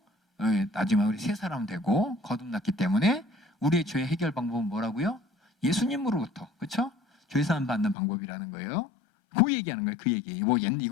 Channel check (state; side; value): drops out; right; at 8.0 s